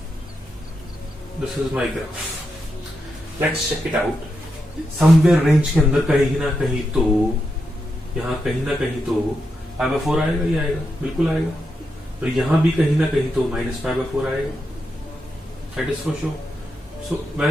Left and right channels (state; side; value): normal; both; correlation 0.85